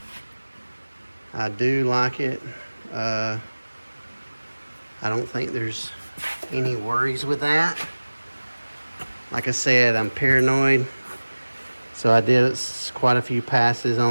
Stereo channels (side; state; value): both; inverted; correlation -1.00